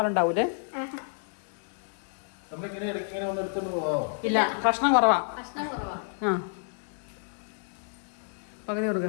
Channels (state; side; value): silent; right; digital silence